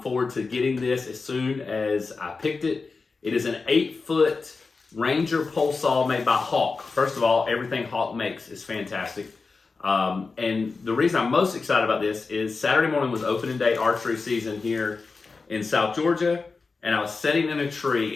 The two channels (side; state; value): right; quieter; 4.3 dB